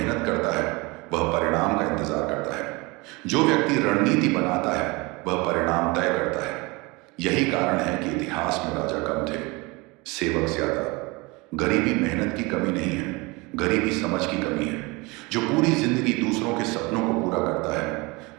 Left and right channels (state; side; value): quieter; left; 25.3 dB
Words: करता है वह परिणाम का इंतजार करता है। जो व्यक्ति रणनीति बनाता है वह परिणाम तय करता है। यही कारण है कि इतिहास में राजा कम थे, सेवक ज्यादा। गरीबी मेहनत की कमी नहीं है, गरीबी समझ की कमी है। जो पूरी जिंदगी दूसरों के सपनों को पूरा करता है